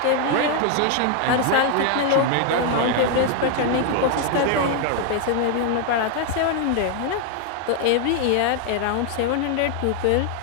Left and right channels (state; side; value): different; both; correlation 0.00